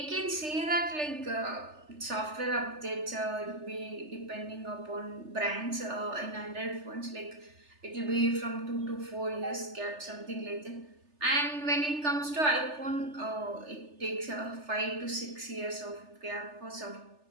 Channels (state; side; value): late; left; 3.3 ms